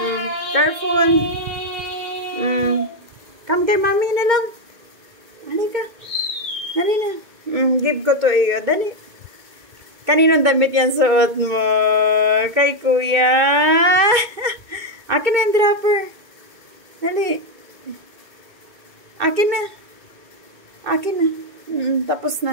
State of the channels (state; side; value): late; left; 2.2 ms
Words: Careful. Come kay mami na lang. Dali ka. Dali na. Give ko to iyo. Dali. Kaninong damit yan suot mo? Kay Kuya. Akin na yung dropper. Dali. Akin na. Akin na. Tapos